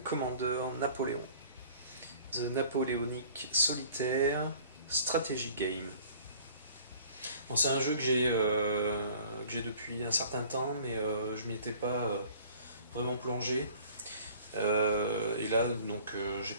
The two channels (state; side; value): inverted; both; correlation -0.50